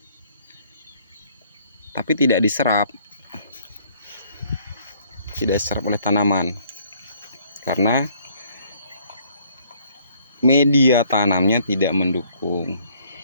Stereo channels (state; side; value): inverted; both; correlation -0.62